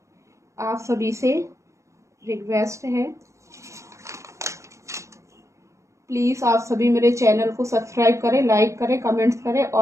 आप सभी से रिक्वेस्ट है, प्लीज़ आप सभी मेरे चैनल को सब्सक्राइब करें, लाइक करें, कमेंट्स करें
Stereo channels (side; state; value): left; late; 0.14 ms